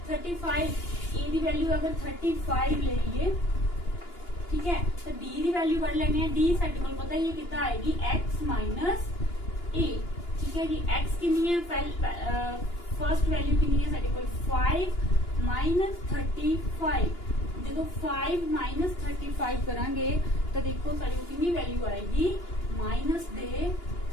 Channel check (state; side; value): late; right; 2.9 ms